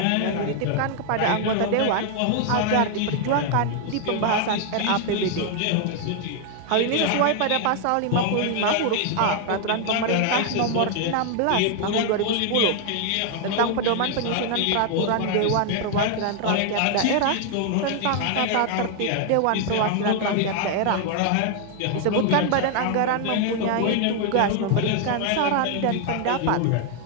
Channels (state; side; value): different; both; correlation 0.00